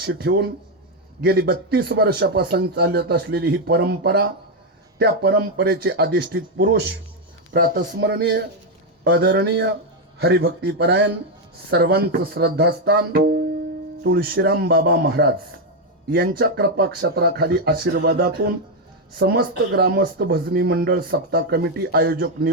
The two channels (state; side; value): normal; both; correlation 0.04